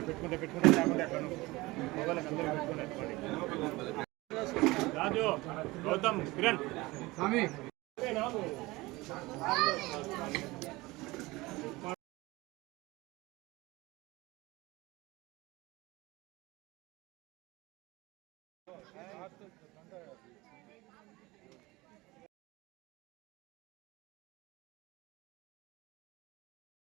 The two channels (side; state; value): left; quieter; 21.2 dB